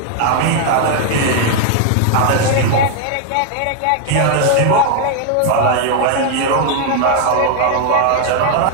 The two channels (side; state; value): both; different; correlation 0.00